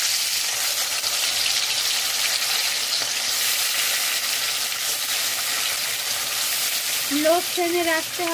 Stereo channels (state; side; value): identical; both; correlation 1.00